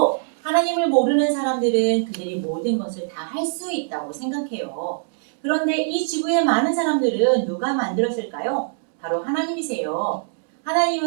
하나님을 모르는 사람들은 그들이 모든 것을 다 할 수 있다고 생각해요. 그런데 이 지구의 많은 사람들은 누가 만들었을까요? 바로 하나님이세요.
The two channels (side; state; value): left; silent; digital silence